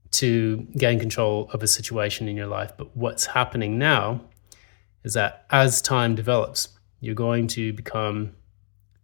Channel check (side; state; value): right; silent; digital silence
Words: to gain control of a situation in your life. But what's happening now is that as time develops, you're going to become